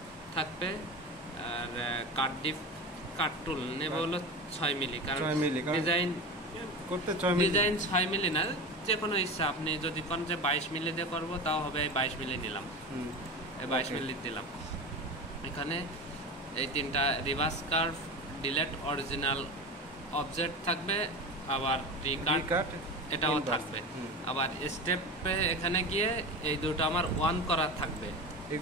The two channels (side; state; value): both; normal; correlation 0.28